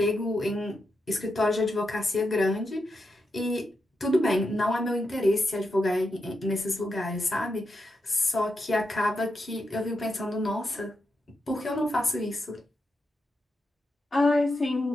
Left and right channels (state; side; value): normal; both; correlation 0.86